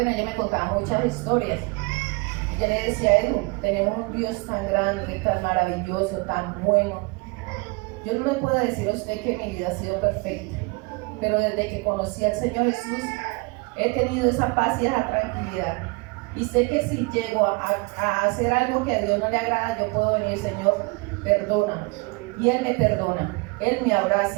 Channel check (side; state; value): left; quieter; 27.9 dB